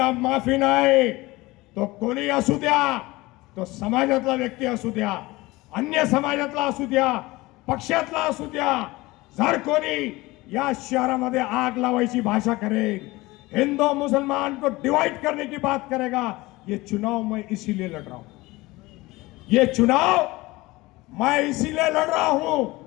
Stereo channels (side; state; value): right; quieter; 20.7 dB